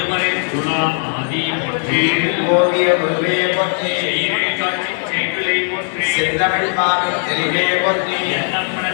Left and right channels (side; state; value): right; silent; 56 dB below the other